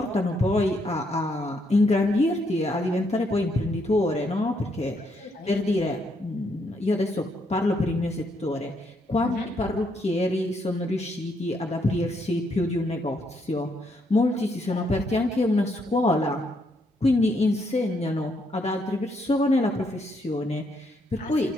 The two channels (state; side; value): normal; both; correlation 0.75